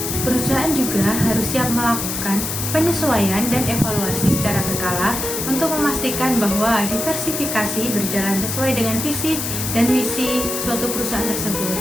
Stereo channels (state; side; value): noise; left; hiss, 3 dB below the sound